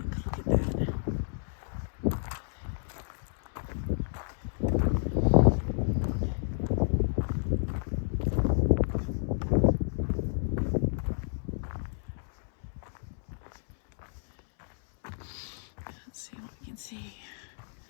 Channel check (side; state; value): right; silent; 57 dB below the other